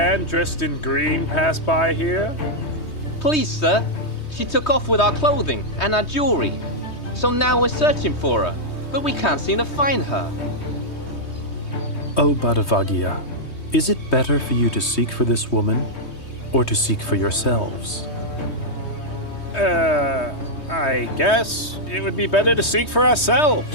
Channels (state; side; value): late; right; 3.2 ms